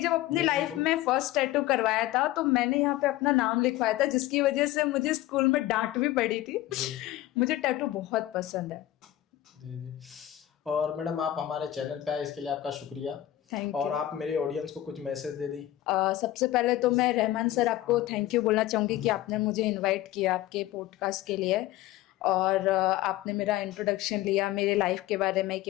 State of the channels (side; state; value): right; quieter; 14.6 dB